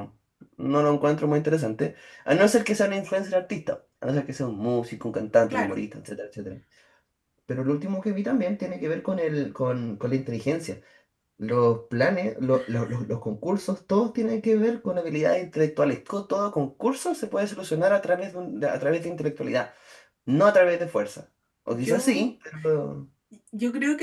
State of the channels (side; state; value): both; identical; correlation 1.00